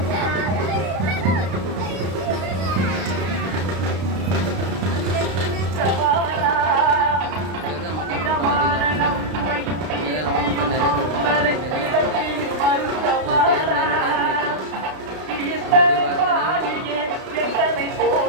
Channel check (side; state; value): left; late; 32 ms